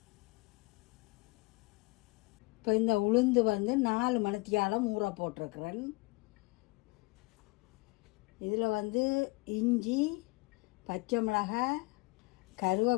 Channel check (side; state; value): right; quieter; 26.2 dB